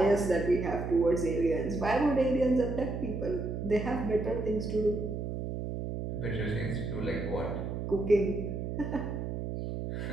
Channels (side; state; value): right; noise; hum, 4 dB below the sound